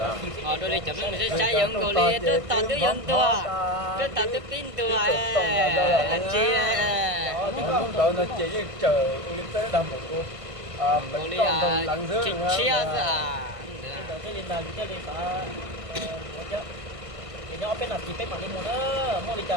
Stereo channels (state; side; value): late; left; 1.5 ms